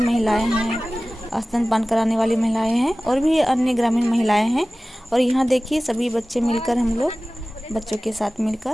हैं, स्तनपान कराने वाली महिलाएं हैं और भी अन्य ग्रामीण महिलाएं हैं। और यहाँ देखिए सभी बच्चे मिलकर, हम लोग बच्चों के साथ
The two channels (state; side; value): normal; both; correlation 0.97